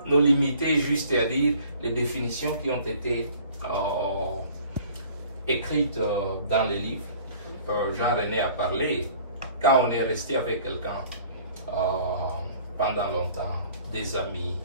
nous limiter juste à lire les définitions qui ont été écrites dans les livres. Jean-René a parlé, quand on est resté avec quelqu'un pendant longtemps, des amis,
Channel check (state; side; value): inverted; both; correlation -0.52